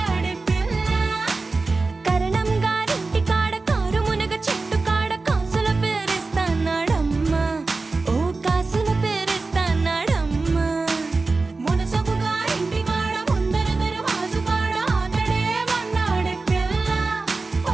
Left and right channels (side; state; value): left; quieter; 3.7 dB